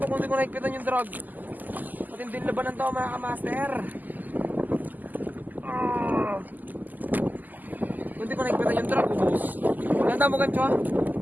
kung di ko naikpitan yung drug. Matinding labanan to mga kamaster. Kung di ko naikpitan yung drug, ubos. Ganda mo gancho ha?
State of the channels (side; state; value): left; late; 0.084 ms